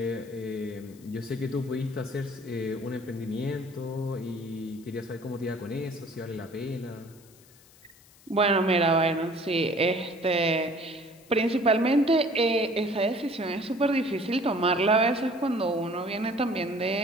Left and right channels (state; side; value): noise; left; hiss, 26 dB below the sound